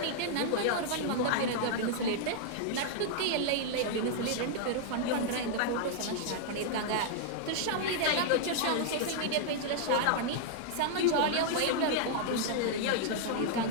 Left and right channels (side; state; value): both; different; correlation -0.01